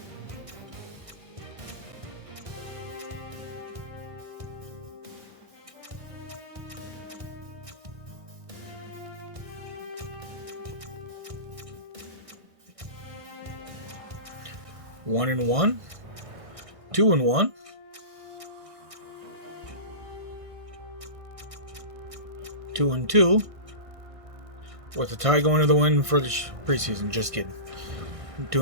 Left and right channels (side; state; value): left; late; 1.6 ms